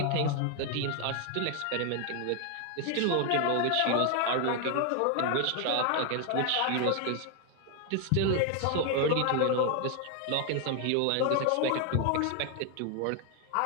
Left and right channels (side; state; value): both; different; correlation 0.01